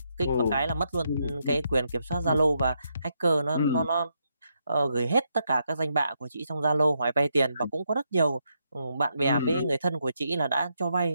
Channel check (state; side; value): inverted; both; correlation -0.80